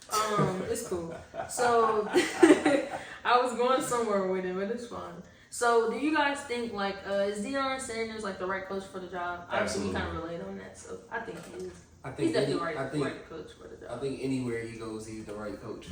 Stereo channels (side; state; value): both; identical; correlation 1.00